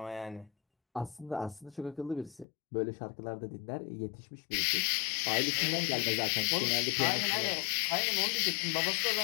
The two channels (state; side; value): drops out; right; at 2.5 s